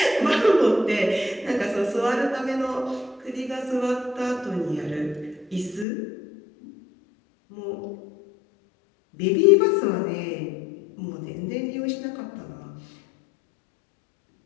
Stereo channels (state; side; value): drops out; right; at 5.9 s